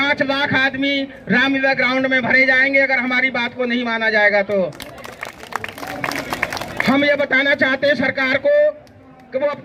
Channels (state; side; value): identical; both; correlation 1.00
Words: लाख आदमी रामलीला ग्राउंड में भरे जाएंगे अगर हमारी बात को नहीं माना जाएगा। तो हम ये बताना चाहते हैं सरकार को कि वो